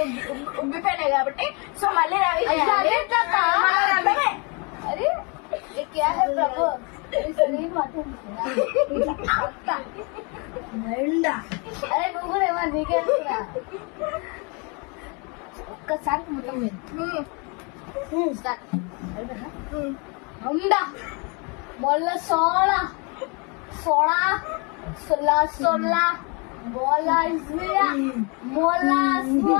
ఉబ్బిపోయినాయి కాబట్టి. సో మళ్ళీ రవి అరే నువ్వు కూడా ఏమన్నా నీకే ఒక్కసారి ఉండా మొల్ల సోడా సోడా సొల్లా సొల్లా బోలా ఇస్మియా మోలా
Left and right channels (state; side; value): quieter; right; 32.4 dB